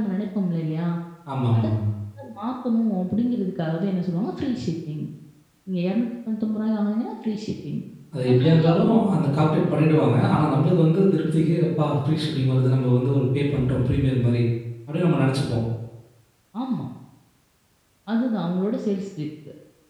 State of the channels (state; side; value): identical; both; correlation 1.00